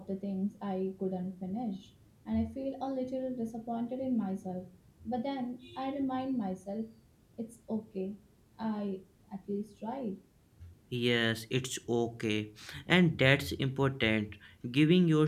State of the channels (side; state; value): both; identical; correlation 1.00